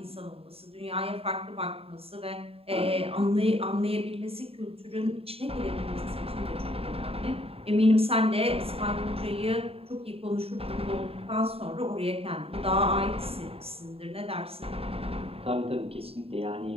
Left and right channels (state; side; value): late; left; 0.28 ms